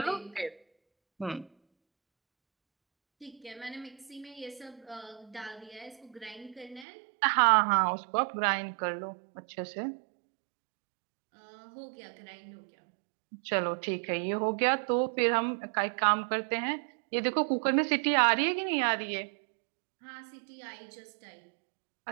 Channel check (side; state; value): left; drops out; at 6.9 s